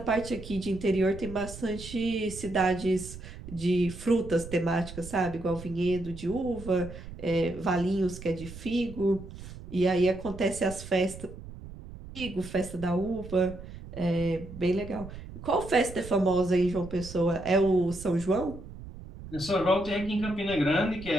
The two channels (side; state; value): right; noise; rumble, 13 dB below the sound